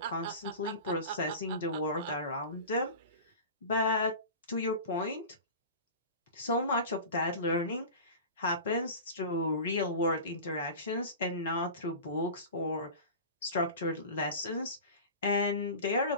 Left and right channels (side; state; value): both; inverted; correlation -0.34